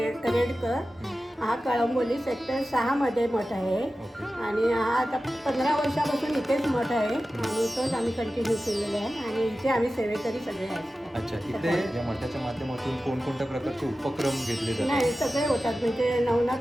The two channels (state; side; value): normal; both; correlation 0.94